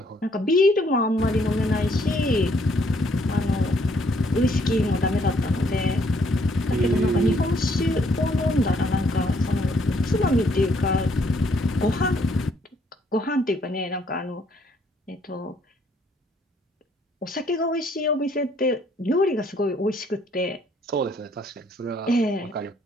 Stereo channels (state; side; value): normal; both; correlation 0.67